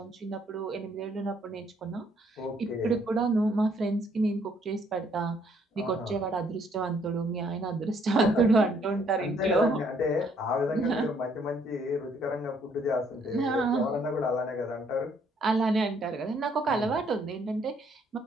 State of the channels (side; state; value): both; normal; correlation 0.66